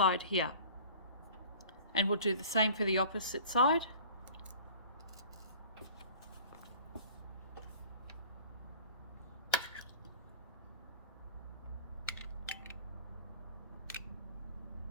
here, and we'll do the same for the opposite side.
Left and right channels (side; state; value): both; inverted; correlation -0.45